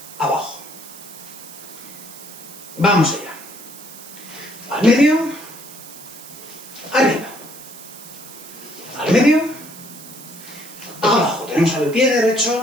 abajo. Vamos allá. Al medio, arriba. Al medio, abajo. Tenemos al pie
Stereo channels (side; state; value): right; noise; hiss, 16 dB below the sound